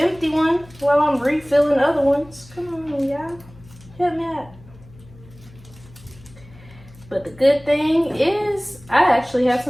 one while I'm refilling other ones. Come on, y'all. Help me out. But the good thing is I actually have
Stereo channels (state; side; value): noise; left; hum, 22 dB below the sound